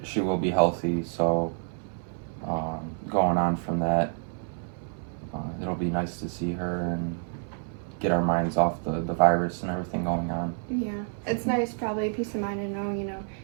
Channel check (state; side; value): silent; left; 59 dB below the other